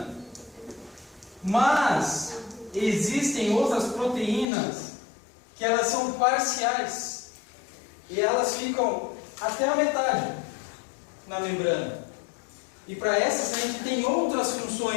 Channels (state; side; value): drops out; right; at 4.5 s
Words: Mas existem outras proteínas que elas são parciais. E elas ficam até a metade na membrana. E para essas a gente tem outras